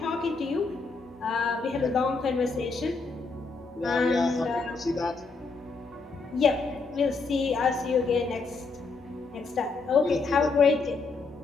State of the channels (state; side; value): quieter; right; 4.2 dB